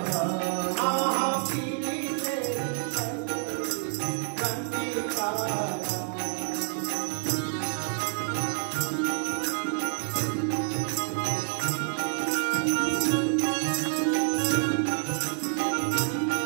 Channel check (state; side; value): silent; left; 59 dB below the other